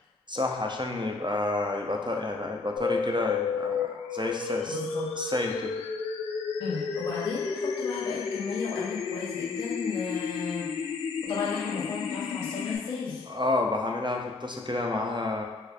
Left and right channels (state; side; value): quieter; right; 3.6 dB